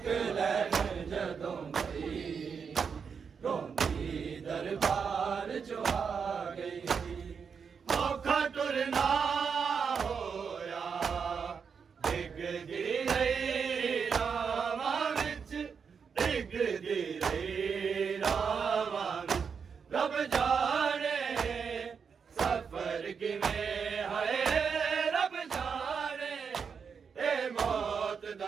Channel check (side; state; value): left; quieter; 6.2 dB